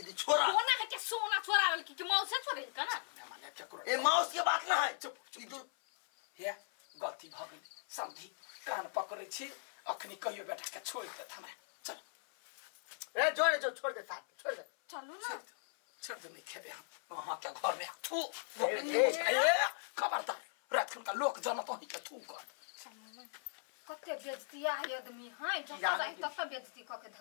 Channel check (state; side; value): silent; right; 52 dB below the other